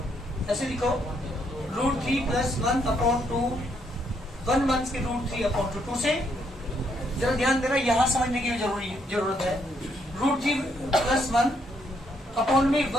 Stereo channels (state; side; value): normal; both; correlation 0.73